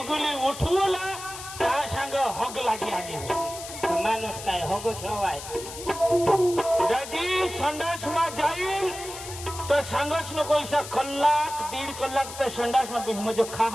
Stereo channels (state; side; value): noise; left; hiss, 11 dB below the sound